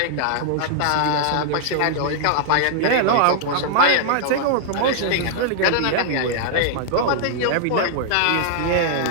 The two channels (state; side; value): different; both; correlation -0.01